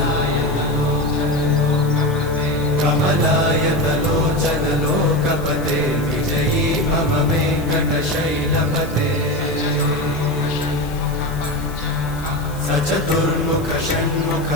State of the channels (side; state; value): left; noise; hiss, 19 dB below the sound